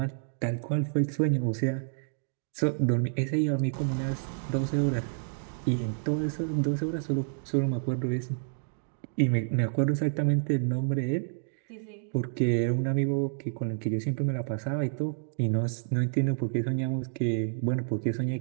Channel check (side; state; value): left; silent; digital silence